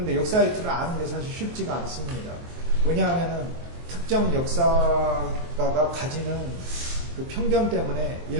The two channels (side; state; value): left; late; 23 ms